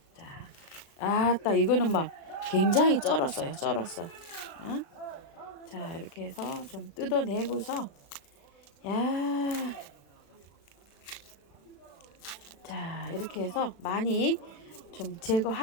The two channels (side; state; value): right; late; 36 ms